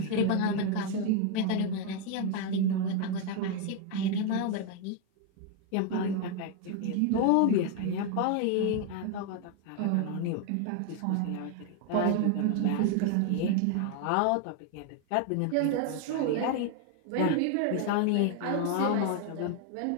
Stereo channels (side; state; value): both; different; correlation 0.00